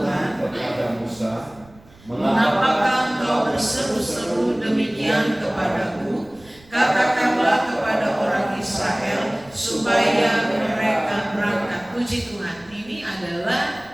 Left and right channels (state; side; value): noise; right; rumble, 25 dB below the sound